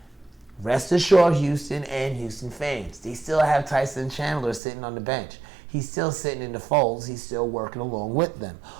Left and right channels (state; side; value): drops out; left; at 4.6 s